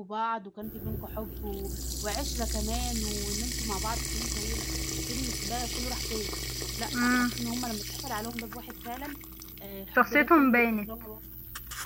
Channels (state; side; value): identical; both; correlation 1.00